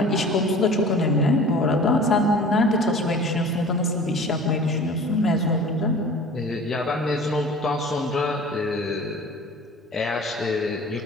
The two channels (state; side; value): normal; both; correlation 0.43